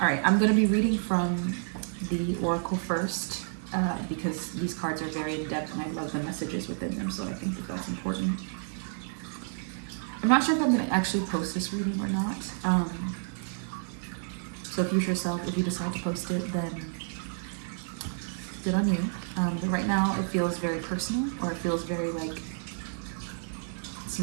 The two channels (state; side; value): silent; left; 58 dB below the other